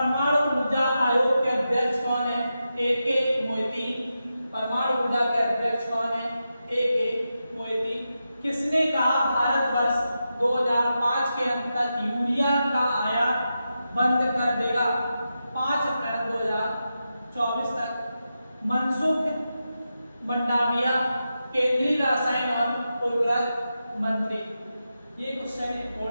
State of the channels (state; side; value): inverted; both; correlation -0.89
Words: ऊर्जा आयोग के अध्यक्ष कौन है? A.K. मोइती। परमाणु ऊर्जा के अध्यक्ष कौन है? A.K. मोइती। किसने कहा भारतवर्ष 2005 के अंत तक यूरिया का आयात बंद कर देगा? 5 अप्रैल 2024 तक। मनसुख मंडाविया, केंद्रीय रसायन और उर्वरक मंत्री। ये क्वेश्चन